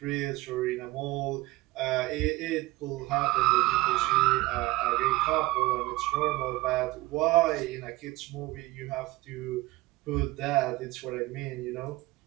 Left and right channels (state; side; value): quieter; left; 19.5 dB